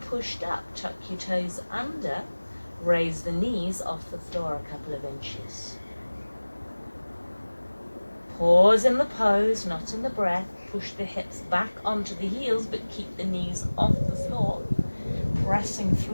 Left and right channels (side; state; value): both; inverted; correlation -1.00